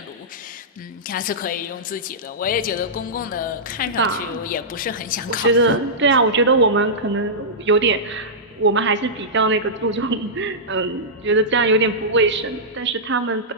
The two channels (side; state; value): both; normal; correlation -0.14